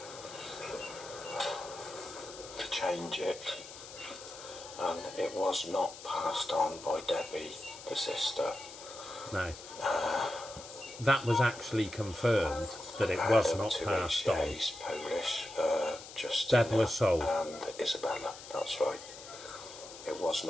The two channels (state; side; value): noise; left; hiss, 14 dB below the sound